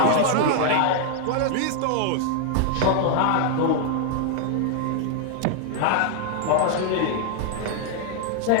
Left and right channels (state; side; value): different; both; correlation 0.00